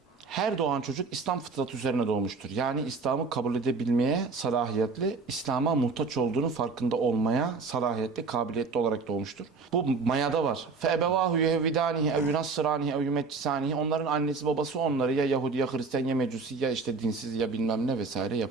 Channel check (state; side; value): quieter; left; 4.5 dB